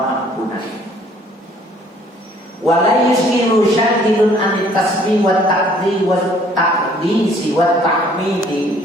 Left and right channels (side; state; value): both; normal; correlation 0.59